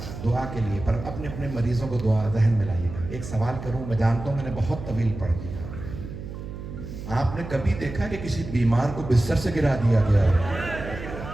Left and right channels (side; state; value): right; noise; hum, 10 dB below the sound